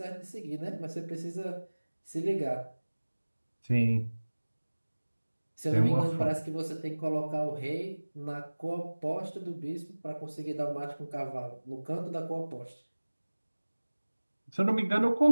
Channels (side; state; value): both; inverted; correlation -1.00